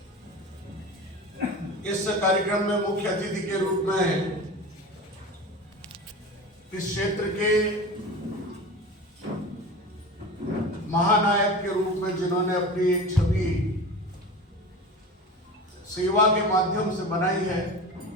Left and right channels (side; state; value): both; normal; correlation 0.32